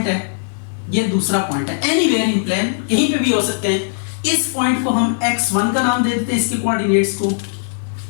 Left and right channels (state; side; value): silent; right; digital silence